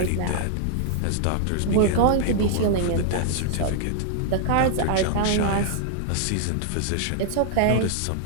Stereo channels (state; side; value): different; both; correlation -0.01